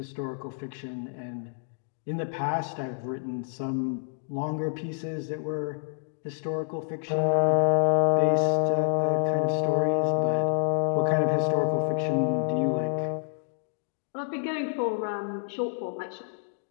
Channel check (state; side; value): silent; right; digital silence